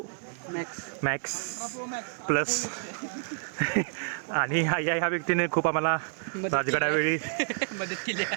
मॅक्स प्लस. आणि ह्या व्यक्तीने खूप आम्हाला राजगडावेळी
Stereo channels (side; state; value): left; silent; 58 dB below the other